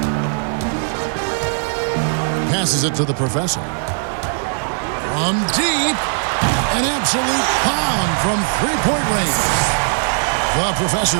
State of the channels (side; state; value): left; silent; digital silence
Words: Passes it to the Professor. From deep, an absolute bomb from three-point range. The